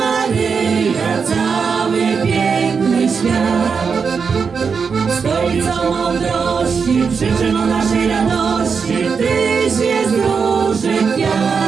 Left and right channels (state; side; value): quieter; left; 5.7 dB